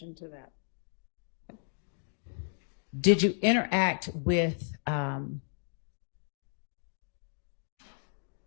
to that. Did you interact with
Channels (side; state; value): right; silent; digital silence